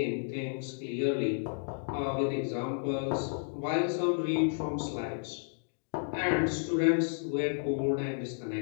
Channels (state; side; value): silent; right; digital silence